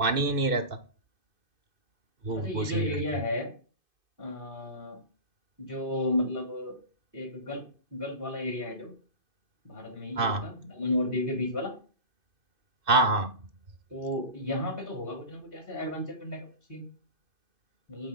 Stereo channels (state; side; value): late; left; 2.6 ms